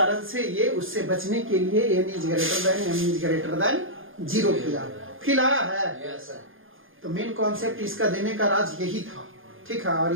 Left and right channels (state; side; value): late; left; 0.59 ms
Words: से ये उससे बचने के लिए n is greater than m is greater than 0 किया, फिर आया है। यस सर, तो मेन कॉन्सेप्ट इसका देने का राज यही था, ठीक है। और